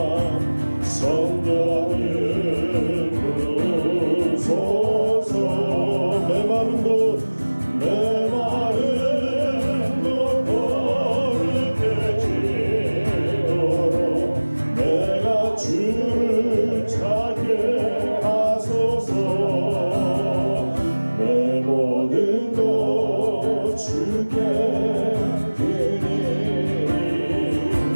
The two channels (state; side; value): inverted; both; correlation -1.00